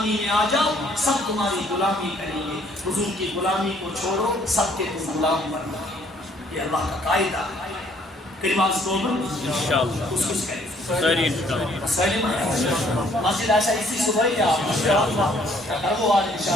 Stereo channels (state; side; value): normal; both; correlation 0.63